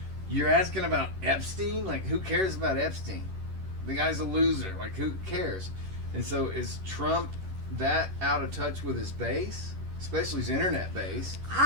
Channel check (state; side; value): late; left; 11 ms